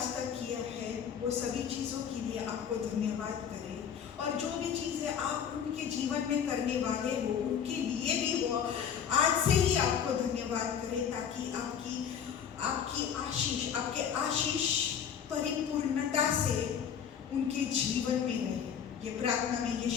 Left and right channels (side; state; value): right; quieter; 8.0 dB